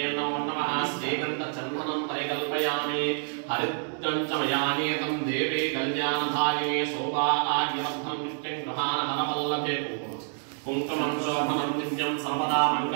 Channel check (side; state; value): left; silent; 59 dB below the other